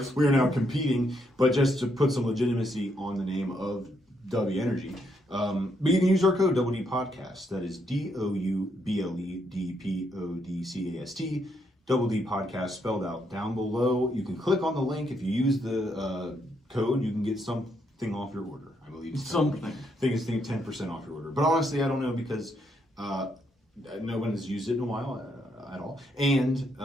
We are now competing, but just to put some legitimacy on the name of W Energy. But you can use our code WD Podcast. That is DOUBLEDPODCAST. Double D Podcast spelled out down below. You can click on the link. If you use the code, you can get something off your order. I believe it's something. I think it's 10% off your order. But honestly, I don't know because no one has used it in a while at all. And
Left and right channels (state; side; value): normal; both; correlation 0.76